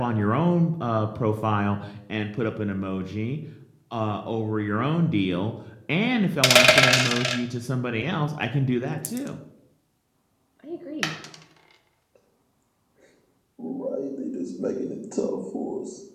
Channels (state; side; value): identical; both; correlation 1.00